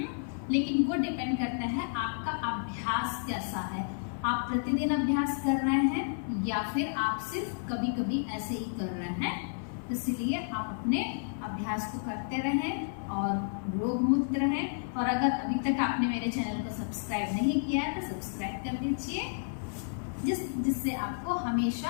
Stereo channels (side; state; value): right; silent; 57 dB below the other